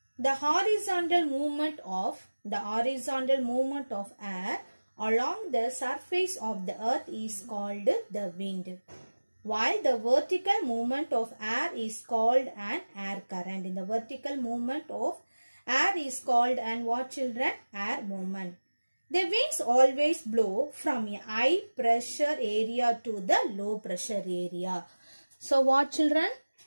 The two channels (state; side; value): inverted; both; correlation -1.00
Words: The horizontal movement of air along the surface of the earth is called the wind, while the vertical movement of air is called an air current. In the vertical movement of air is called an what, children? Air movement. The winds always blow from a high pressure area to the low pressure area. So what, children?